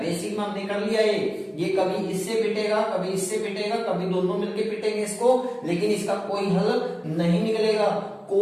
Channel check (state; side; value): identical; both; correlation 1.00